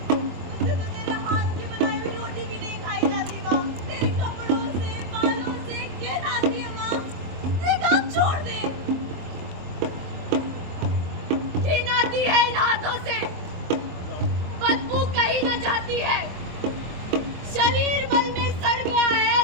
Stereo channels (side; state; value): left; late; 23 ms